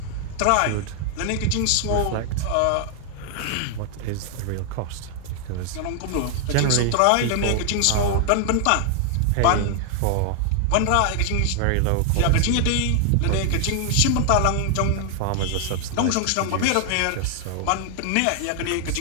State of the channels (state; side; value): different; both; correlation 0.00